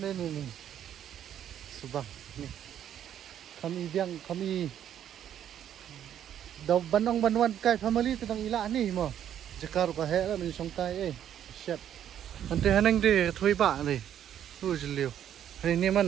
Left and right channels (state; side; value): quieter; left; 10.2 dB